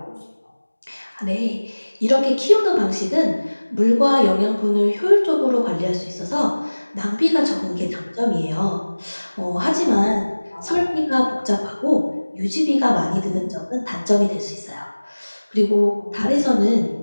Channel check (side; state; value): both; inverted; correlation -1.00